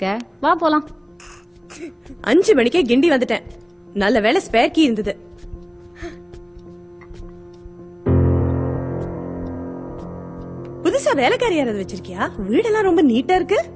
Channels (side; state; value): both; identical; correlation 1.00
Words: வா போலாம். 5 மணிக்கே கிண்டி வந்துட்டேன். நல்ல வேளை ஸ்பேர் கீ இருந்தது. புதுசா வேலைக்காரி யாராவது வச்சிருக்கியா? வீடெல்லாம் ரொம்ப நீட்டா இருக்கு.